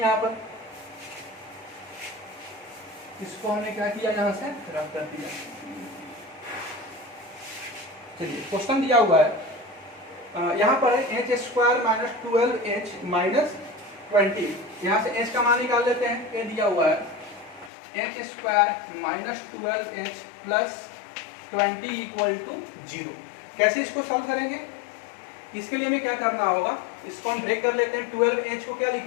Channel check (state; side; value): drops out; right; at 17.7 s